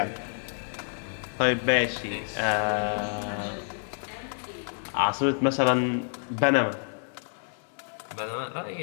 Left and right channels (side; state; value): right; silent; 59 dB below the other